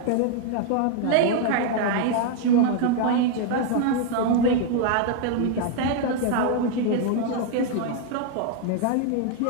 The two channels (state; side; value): different; both; correlation 0.00